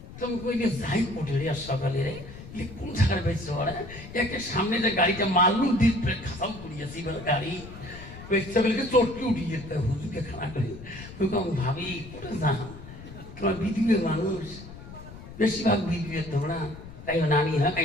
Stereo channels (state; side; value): noise; left; rumble, 14 dB below the sound